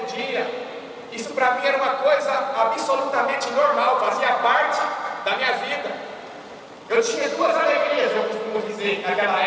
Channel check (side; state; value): both; identical; correlation 1.00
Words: dia. Isso para mim era uma coisa absolutamente normal, fazia parte da minha vida. Eu tinha 2 alegrias, eu costumo dizer, naquela